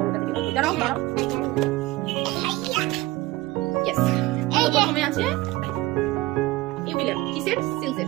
থেকে দাঁড়াও দাঁড়াও। ইয়েস, প্রথমে আছে ইউবিলের কিসের সিলসের।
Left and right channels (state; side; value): quieter; left; 18.7 dB